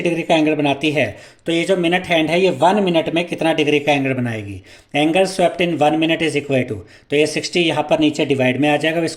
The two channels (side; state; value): both; identical; correlation 1.00